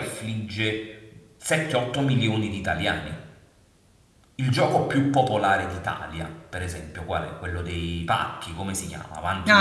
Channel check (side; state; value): both; identical; correlation 1.00